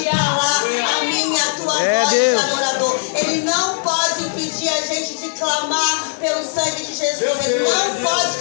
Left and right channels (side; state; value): right; silent; 63 dB below the other